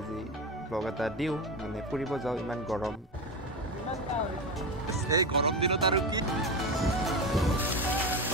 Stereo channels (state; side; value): normal; both; correlation 0.19